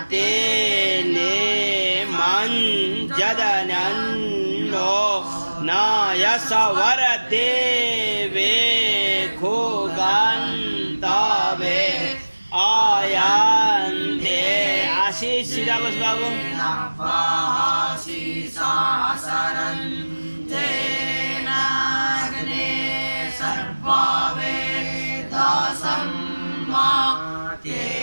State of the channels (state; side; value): inverted; both; correlation -1.00